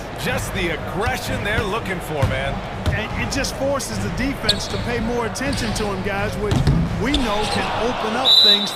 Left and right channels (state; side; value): identical; both; correlation 1.00